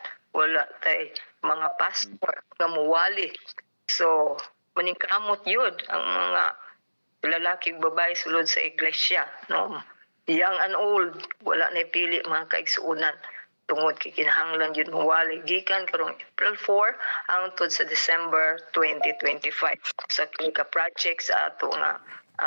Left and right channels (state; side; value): inverted; both; correlation -1.00